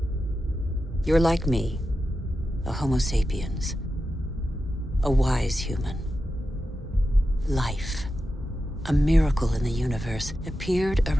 You're like me, a Homo sapiens, a wise human. Life, a miracle in the universe, appeared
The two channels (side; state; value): both; normal; correlation 0.91